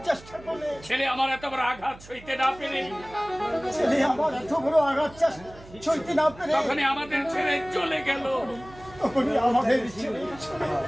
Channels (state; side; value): noise; right; hum, 20 dB below the sound